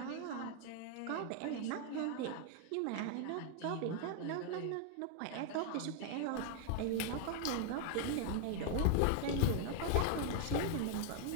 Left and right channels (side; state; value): both; different; correlation 0.00